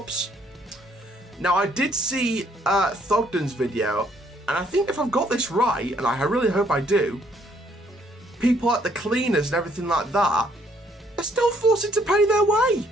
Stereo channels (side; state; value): both; normal; correlation 0.66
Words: Now, I did see Thogden's video, And I think if I've got this right, and I really hope I do, people like the cleaners and everything like that are still forced to pay their way.